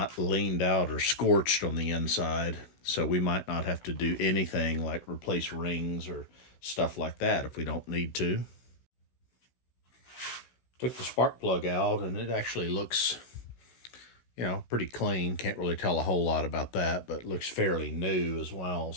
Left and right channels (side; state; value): right; late; 16 ms